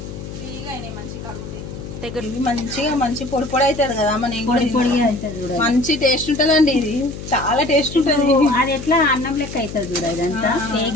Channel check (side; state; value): left; noise; hum, 10 dB below the sound